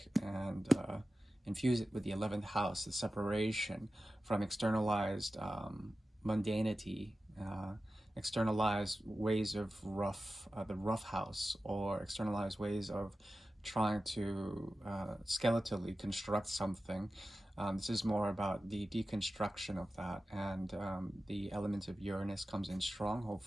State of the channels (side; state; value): both; normal; correlation 0.94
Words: and infuse it with the 11th house, the separation from externalized mundanity, externalized ways of the rough house, or externalized ways of trying to skeletally construct something. This is more about the deconstruction of that, and the element of Uranus comes in strong.